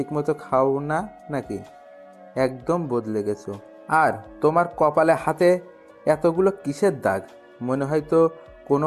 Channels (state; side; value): identical; both; correlation 1.00